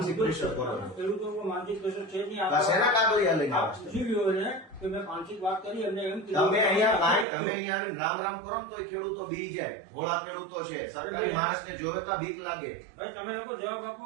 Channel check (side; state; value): left; drops out; at 7.2 s